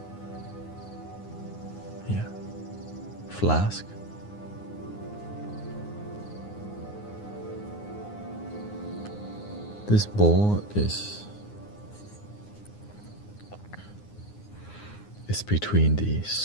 Yeah. Flask. This bowl is between the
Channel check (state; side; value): late; right; 9.7 ms